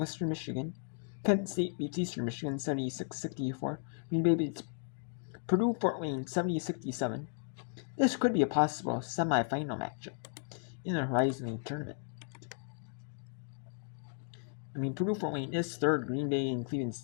Michigan. Kent State beats Eastern Michigan 76-64. Green Bay beats Purdue Fort Wayne 70-67. This could be a possible semifinal matchup in the Horizon League tournament. I mean, Purdue Fort Wayne is third. Green Bay and Cleveland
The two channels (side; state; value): right; silent; digital silence